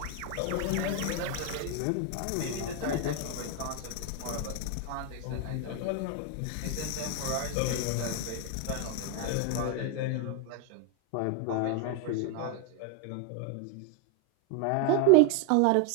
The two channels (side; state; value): both; different; correlation 0.01